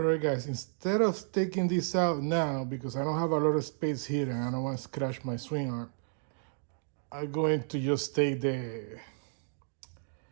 right, guys, instead of taking this out now, because I don't have a lot of space here and I don't want to scratch my swing arm, I'm going to just take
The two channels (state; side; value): silent; left; digital silence